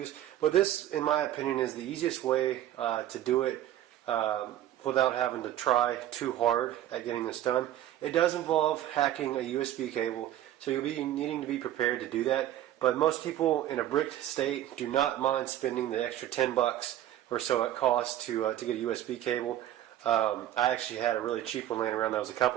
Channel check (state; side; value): quieter; left; 12.5 dB